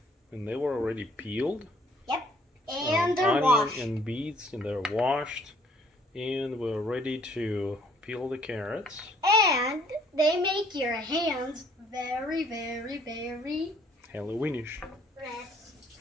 And they were already peeled. Yep. And they're washed. Onion and beets, and they're washed. And we're ready to peel the carrots. And they make your hands very, very, very Halloweenish. red.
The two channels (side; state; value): both; normal; correlation 0.61